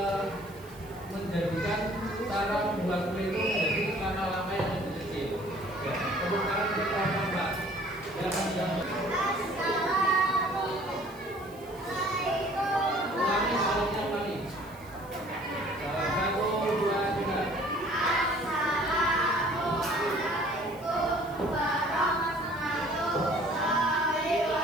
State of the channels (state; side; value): noise; right; hiss, 24 dB below the sound